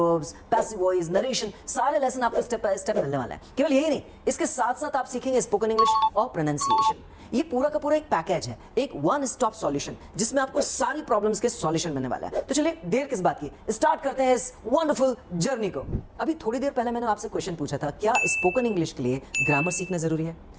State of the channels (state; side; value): identical; both; correlation 1.00